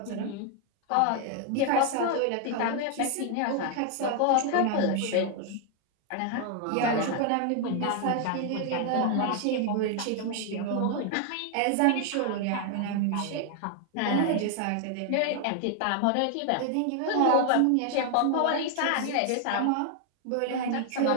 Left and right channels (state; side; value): different; both; correlation 0.00